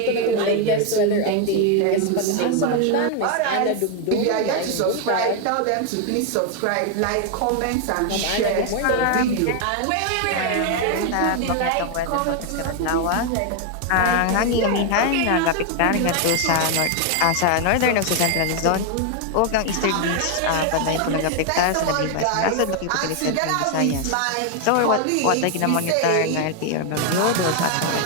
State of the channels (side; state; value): both; different; correlation 0.00